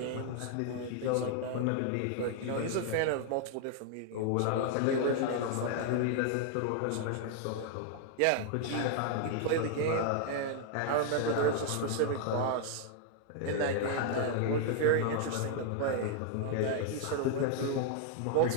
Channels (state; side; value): different; both; correlation 0.00